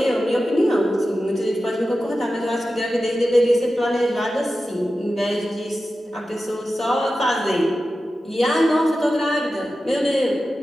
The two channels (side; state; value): both; normal; correlation 0.93